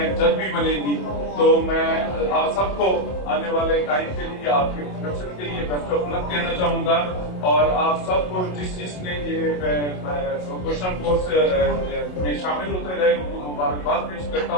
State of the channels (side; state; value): right; late; 27 ms